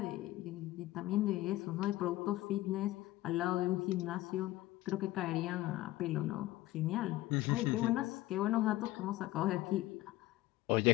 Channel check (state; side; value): quieter; right; 16.8 dB